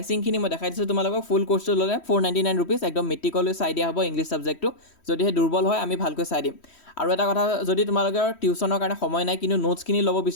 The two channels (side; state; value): right; late; 3.1 ms